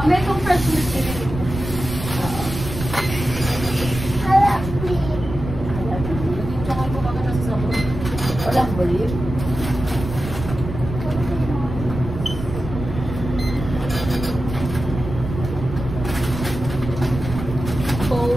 May kong fresh milk din. Tsaka ko baka nasa sabon. Walang believe.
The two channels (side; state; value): right; noise; rumble, 7 dB below the sound